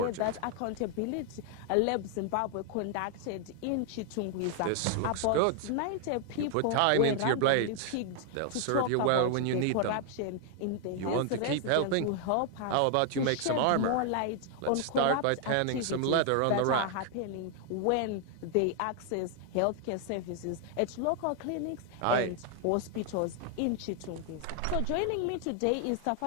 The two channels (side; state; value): both; different; correlation 0.00